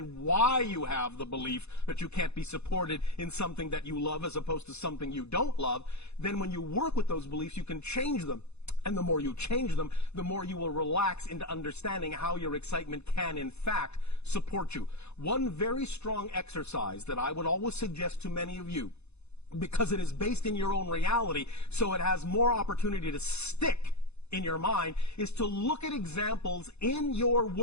why you have the belief that you can't be supported in something that you love as opposed to something you don't love, then when you work with those beliefs, you can change them. And the more you change them, the more you will relax into understanding how your excitement can, in fact, support you. One very strong exercise that I would always suggest to many of you, because it is based in your own reality, so it has more opportunity to stick in your mind, is to look at examples in your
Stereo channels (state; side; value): late; right; 0.80 ms